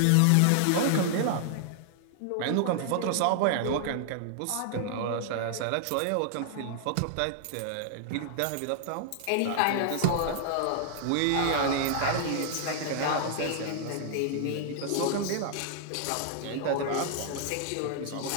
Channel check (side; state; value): both; different; correlation -0.01